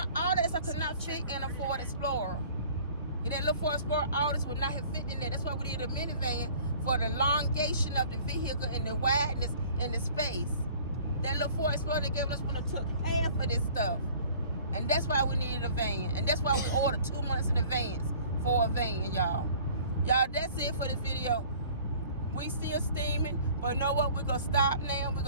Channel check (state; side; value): inverted; both; correlation -0.51